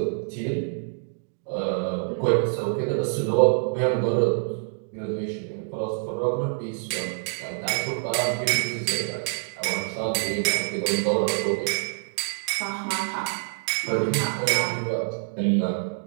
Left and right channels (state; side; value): silent; left; digital silence